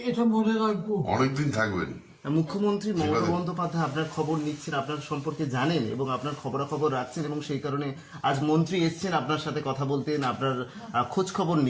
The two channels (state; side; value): identical; both; correlation 1.00